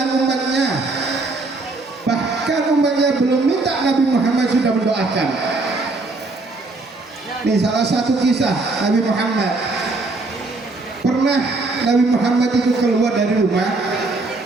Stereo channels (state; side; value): quieter; left; 3.3 dB